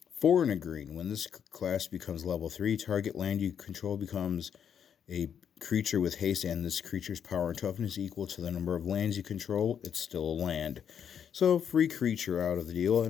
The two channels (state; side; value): quieter; right; 8.2 dB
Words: 4 in a green. When this class becomes level 3, target land you control becomes a creature with haste, and this creature's power and toughness equal to the number of lands you control. It's still a land. So free creature out of the deal,